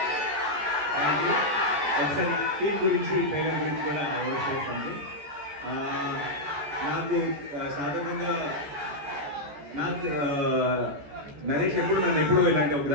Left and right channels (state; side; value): late; left; 14 ms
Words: ఒకసారి టీం గురించి ట్రైలర్ గురించి కూడా వర్క్ చేస్తాను. నాకు సాధారణంగా నరేష్ నన్ను ఎప్పుడూ ఇలాంటి ఒక